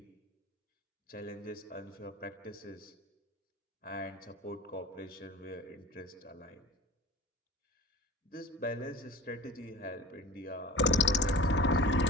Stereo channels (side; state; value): both; normal; correlation 0.38